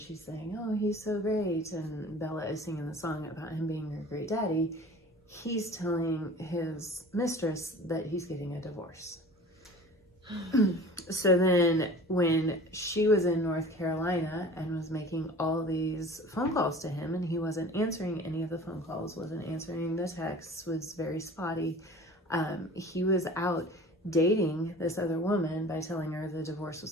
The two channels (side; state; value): both; normal; correlation 0.42